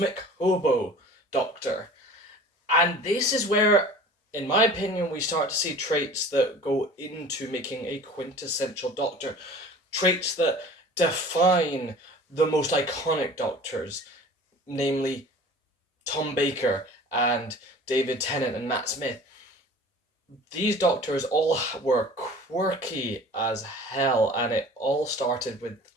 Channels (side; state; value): both; normal; correlation 0.43